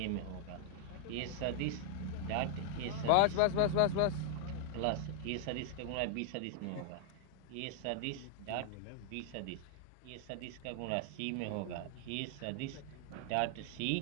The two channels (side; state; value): both; different; correlation -0.01